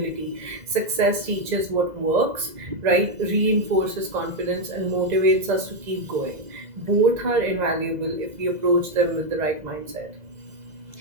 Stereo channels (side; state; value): left; late; 2.0 ms